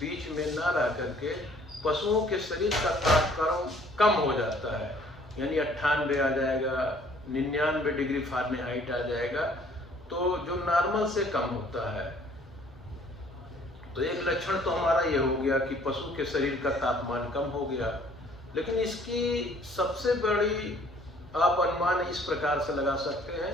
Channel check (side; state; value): both; normal; correlation 0.58